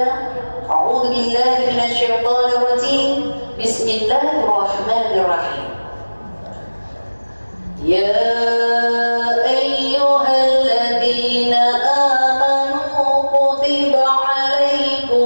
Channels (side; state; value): both; inverted; correlation -1.00